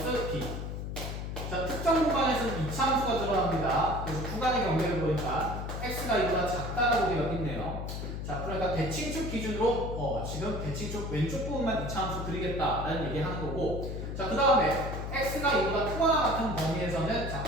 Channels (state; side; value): noise; left; hum, 5 dB below the sound